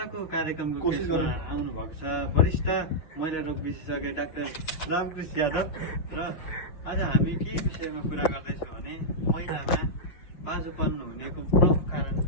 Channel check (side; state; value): right; late; 6.5 ms